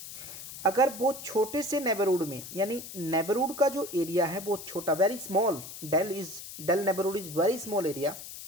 अगर बहुत छोटे से नेबरहुड में, यानी नेबरहुड का जो एरिया है बहुत छोटा, very small, del neighbourhood is very small area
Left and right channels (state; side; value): noise; left; hiss, 12 dB below the sound